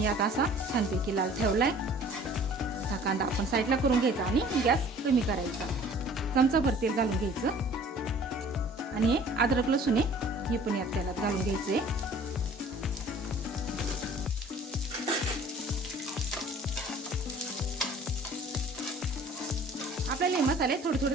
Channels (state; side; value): normal; both; correlation 0.50